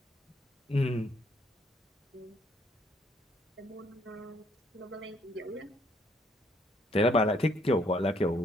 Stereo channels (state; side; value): normal; both; correlation 0.67